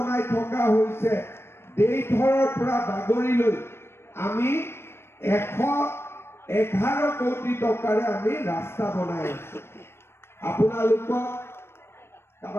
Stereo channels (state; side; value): late; right; 0.12 ms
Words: থকা হৈছে দেইথৰৰ পৰা বাগৰিলৈ আমি 111 কোটি টকাৰে আমি ৰাস্তা বনাই আছো আপোনালোকক